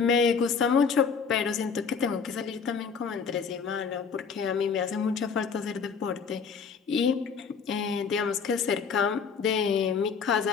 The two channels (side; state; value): right; quieter; 6.0 dB